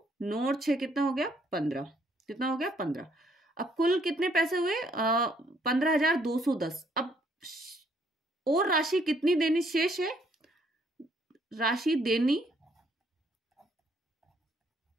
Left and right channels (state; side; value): normal; both; correlation 0.67